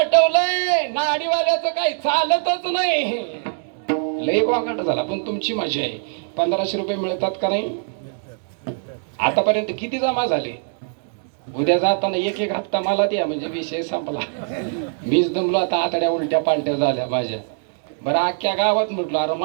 नाडीवाल्याचं काही चालतच नाही. लय वागाट झाला. पण तुमची मजा आहे, 1500 रुपये मिळतात का नाही? आतापर्यंत किती जमा झाले? उद्या जाताना एक एक हप्ता मला द्या, म्हणजे विषय संपला. मीच दमलो आता, आतड्या उलट्या पालट्या झाल्या माझ्या. बरं, अख्ख्या गावात म्हटलं अरे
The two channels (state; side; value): silent; left; 64 dB below the other